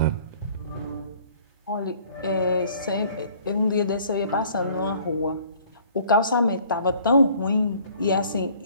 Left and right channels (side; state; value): both; inverted; correlation -0.55